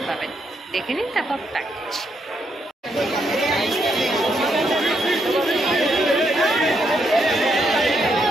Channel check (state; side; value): normal; both; correlation 0.77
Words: পাবেন। দেখে নিন, তারপর প্যাকেজ।